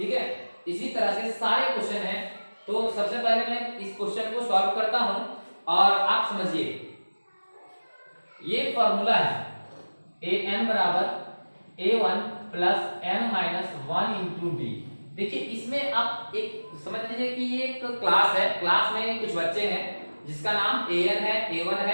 है। इसी तरह से सारे क्वेश्चन हैं। तो सबसे पहले मैं इस क्वेश्चन को सॉल्व करता हूं, और आप समझिए ये फॉर्मूला है an बराबर a1 plus n minus 1 into D. देखिए इसमें आप एक समझ लीजिए कि ये एक क्लास है, क्लास में कुछ बच्चे हैं जिसका नाम an है, a1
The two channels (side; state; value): both; inverted; correlation -1.00